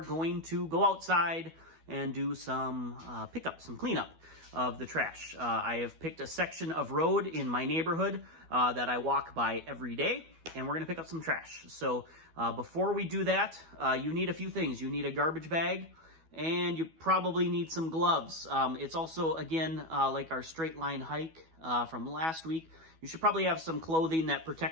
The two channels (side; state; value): left; late; 12 ms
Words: going to go outside and do some pickup, some cleanup of the trash. I have picked a section of road in my neighborhood that I walk by every day, and we're gonna pick up some trash. So before we do that, you need a few things. You need a garbage bag, and you probably need some gloves. It's also, again, like our straight line hike from last week. You should probably have some clothing that